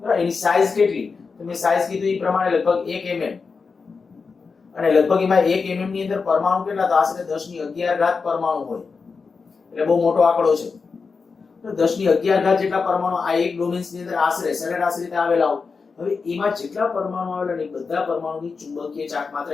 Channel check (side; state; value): right; quieter; 4.9 dB